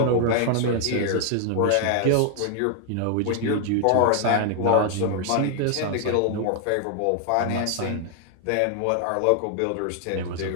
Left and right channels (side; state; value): both; different; correlation 0.00